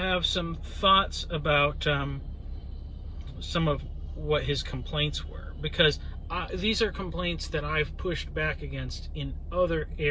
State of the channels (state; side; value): identical; both; correlation 1.00